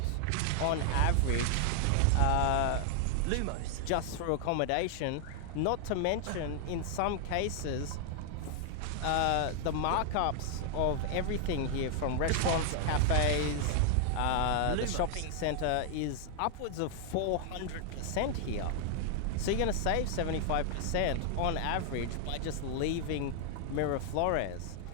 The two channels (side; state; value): both; different; correlation 0.00